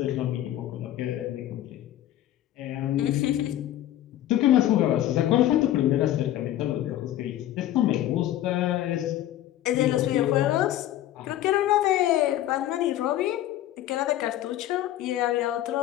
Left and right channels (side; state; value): right; quieter; 13.2 dB